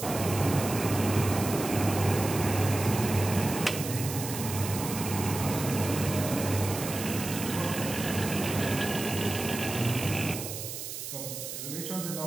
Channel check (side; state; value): right; noise; hiss, 7 dB below the sound